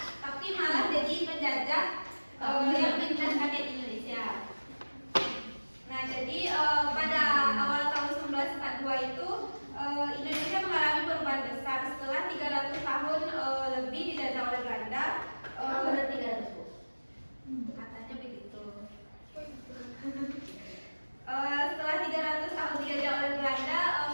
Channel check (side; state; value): both; inverted; correlation -1.00